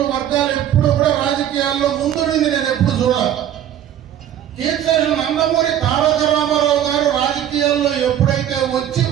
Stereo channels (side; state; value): left; quieter; 10.7 dB